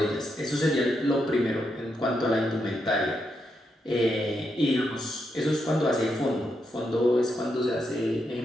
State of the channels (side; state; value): both; normal; correlation 0.82